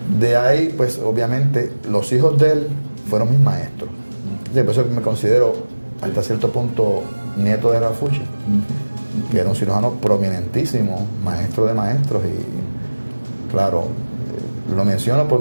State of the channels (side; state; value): both; inverted; correlation -1.00